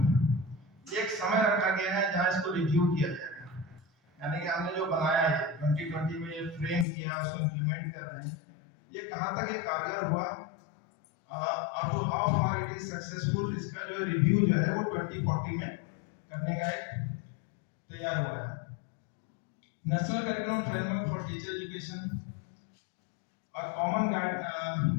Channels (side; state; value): right; drops out; at 6.9 s